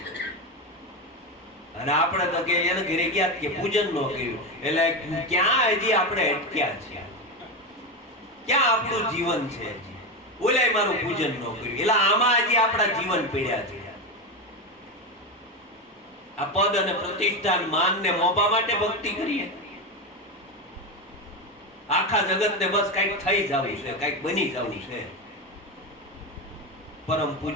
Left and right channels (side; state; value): both; normal; correlation 0.15